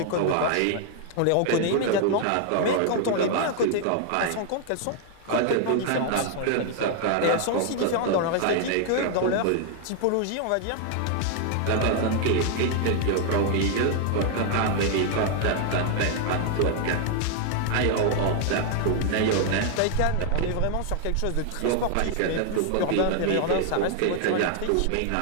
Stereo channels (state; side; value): different; both; correlation 0.00